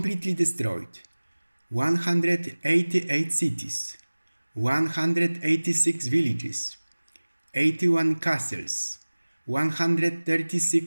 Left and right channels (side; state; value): both; inverted; correlation -1.00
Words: destroyed 188 cities, 186 villages, 81 castles,